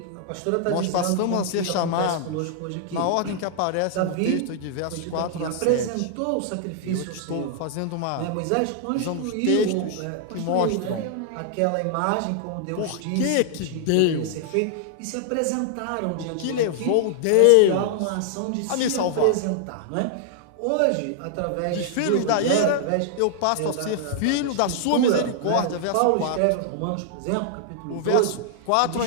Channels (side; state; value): both; different; correlation -0.01